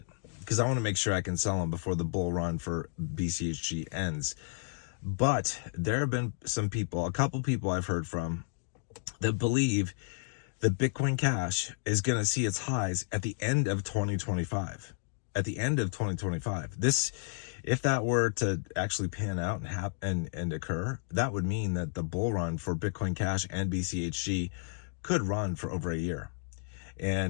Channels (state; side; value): silent; right; digital silence